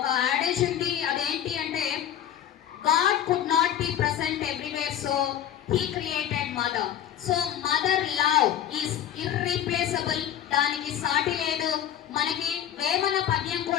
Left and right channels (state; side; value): quieter; right; 10.4 dB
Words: యాడేజ్ ఉంది. అదేంటి అంటే, God could not be present everywhere, so he created mother. So mother love is irreplaceable. దానికి సాటి లేదు. మనకి వేమన పద్యం